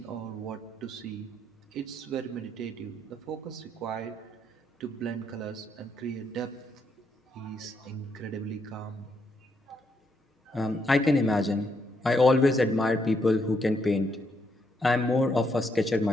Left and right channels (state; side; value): normal; both; correlation 0.76